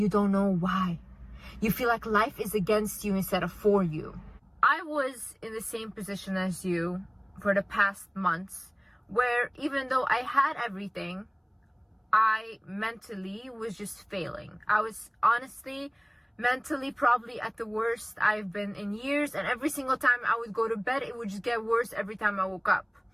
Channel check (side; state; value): both; identical; correlation 1.00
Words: don't know why. You feel like life is against you instead of for you. I was in the same position as you for the past months, where even though I had everything, I mentally was just failing. I was honestly mentally probably at the worst I've been in years, and every single time I would go to bed, it would just get worse every time I woke up.